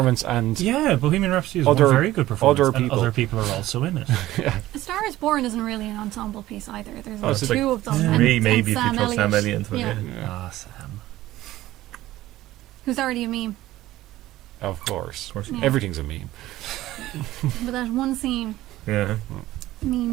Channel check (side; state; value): left; quieter; 15.7 dB